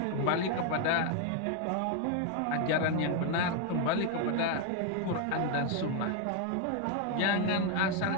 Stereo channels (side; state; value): both; different; correlation 0.00